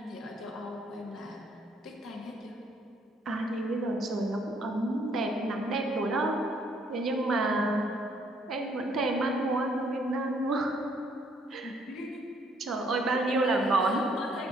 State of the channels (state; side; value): normal; both; correlation 0.66